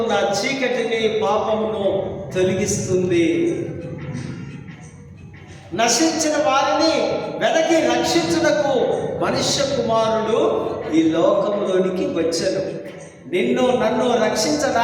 చీకటిని, పాపమును తొలగిస్తుంది. నశించిన వారిని వెనక్కి రక్షించుటకు మనుష్య కుమారుడు ఈ లోకంలోనికి వచ్చాడు. నిన్ను నన్ను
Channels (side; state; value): both; identical; correlation 1.00